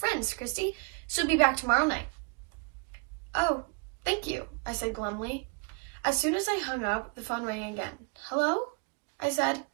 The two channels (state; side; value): quieter; left; 32.8 dB